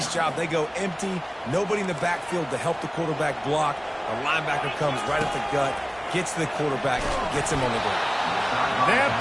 job. They go empty. Nobody in the backfield to help the quarterback block. A linebacker comes right at the gut, gets to the quarterback, gets him on the ground. That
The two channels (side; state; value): both; identical; correlation 1.00